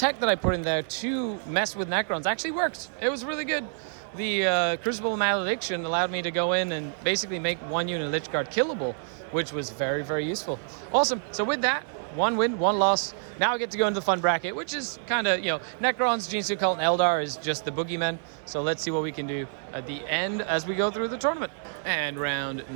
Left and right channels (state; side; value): silent; left; 60 dB below the other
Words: that I put in there to mess with Necrons actually worked. It was really good. The Crucible Malediction allowed me to go in and basically make one unit Lich Guard killable, which was very, very useful. Awesome. So with that, 1 win, 1 loss. Now I get to go into the fun bracket, which is kind of, Necrons, Genes of the Cult, and Eldar is just the boogeymen. So let's see what we can do at the end as we go through the tournament. And round